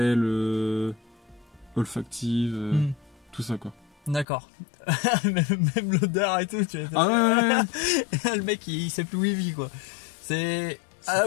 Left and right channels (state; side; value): drops out; right; at 4.2 s